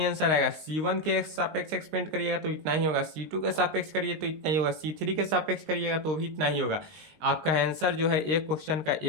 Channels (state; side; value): late; left; 19 ms